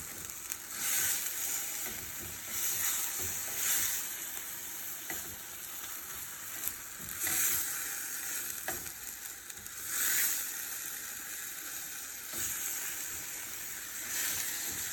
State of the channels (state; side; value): identical; both; correlation 1.00